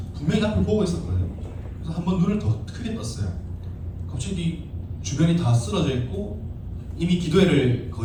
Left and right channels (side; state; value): both; identical; correlation 1.00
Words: 분명히 앞을 보고 있었거든요. 그래서 한번 눈을 더 크게 떴어요. 갑자기 주변이 다 쓰러져 있고 이미 기도회를